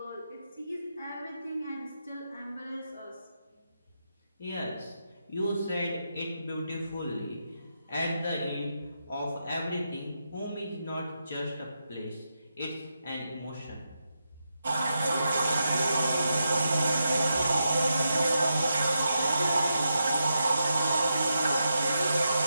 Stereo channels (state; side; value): inverted; both; correlation -0.85